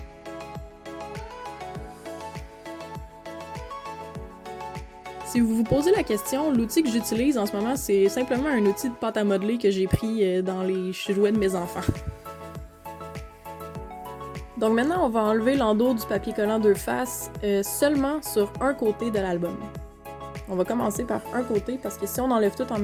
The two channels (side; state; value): both; identical; correlation 1.00